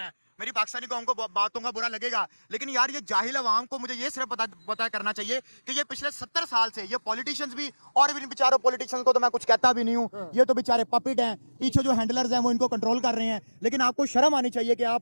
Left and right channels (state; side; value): inverted; both; correlation -1.00